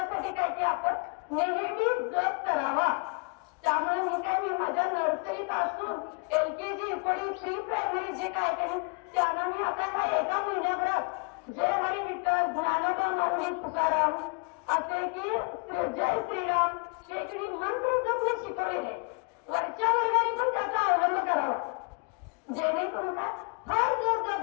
काय की आपण नेहमी जप करावा. त्यामुळे मी माझ्या नर्सरीत असून LKG, प्री प्रायमरी जे काय केले त्यांना मी आता एका महिन्याभरात जय हरी विठ्ठल, ज्ञानोबा माऊली तुकाराम असे की जय श्रीराम हे मंत्र जपणे शिकवलेले.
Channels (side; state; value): right; quieter; 36.9 dB